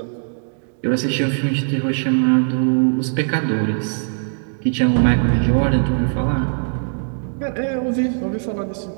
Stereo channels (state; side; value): silent; left; digital silence